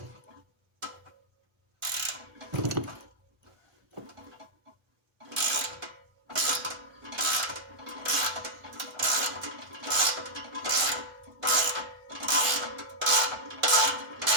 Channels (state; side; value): late; left; 1.1 ms